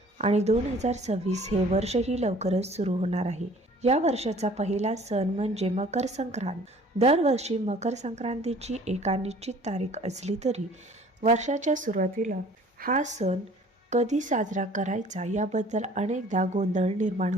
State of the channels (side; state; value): both; normal; correlation 0.51